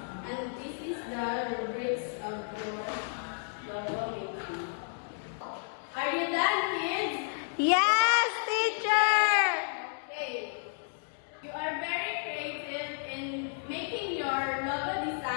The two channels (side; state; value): right; silent; digital silence